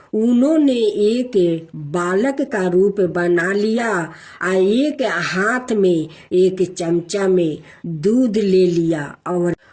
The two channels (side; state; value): both; identical; correlation 1.00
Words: उन्होंने एक बालक का रूप बना लिया और एक हाथ में एक चमचा में दूध ले लिया और